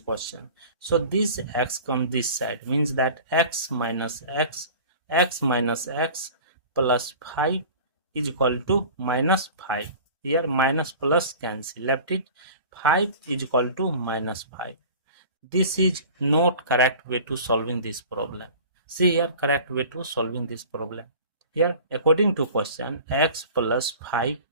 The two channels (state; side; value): inverted; both; correlation -0.41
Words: So this x comes this side, means that x minus x plus 5 is equal to minus 5. Here minus plus cancel, left it 5 is equal to minus 5. This is not correct way to solving this problem. See here, correct way to solving this problem. Here, according to question, x plus 5